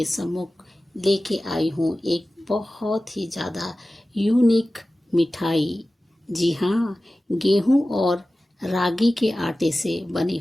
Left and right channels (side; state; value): both; normal; correlation 0.96